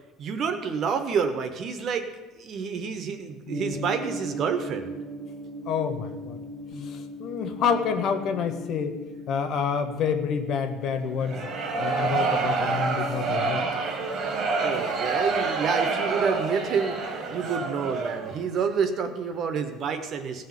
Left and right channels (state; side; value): normal; both; correlation 0.52